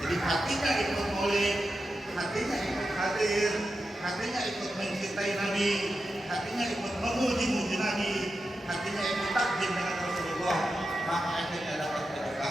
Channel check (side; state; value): both; normal; correlation 0.90